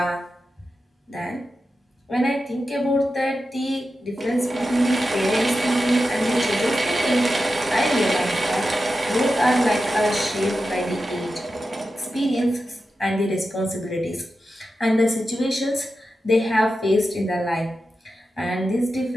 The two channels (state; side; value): normal; both; correlation 0.91